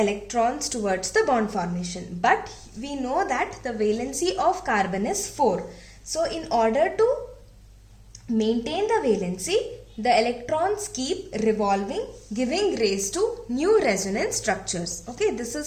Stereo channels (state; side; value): identical; both; correlation 1.00